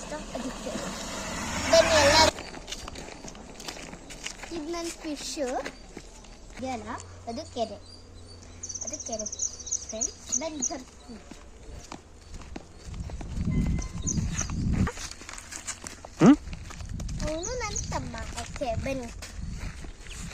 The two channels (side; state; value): both; identical; correlation 1.00